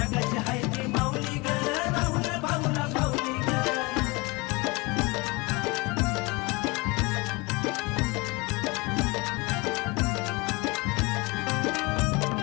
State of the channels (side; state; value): right; quieter; 25.8 dB